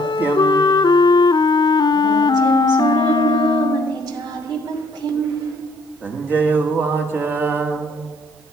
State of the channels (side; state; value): both; normal; correlation 0.64